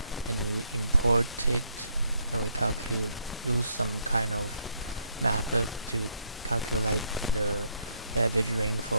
and we import it, and we use some kind of method to calculate the average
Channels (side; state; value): both; inverted; correlation -0.73